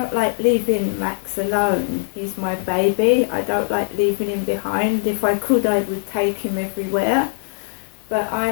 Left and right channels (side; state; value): right; silent; digital silence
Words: like leaving Max alone. He's my baby. I don't like leaving him behind. If I could, I would take him everywhere. But